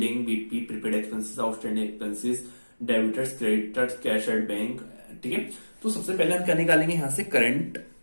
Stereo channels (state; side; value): inverted; both; correlation -1.00